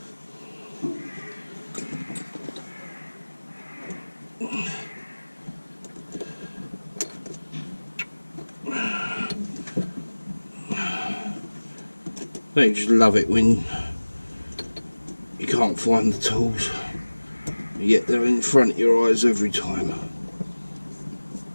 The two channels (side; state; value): both; inverted; correlation -1.00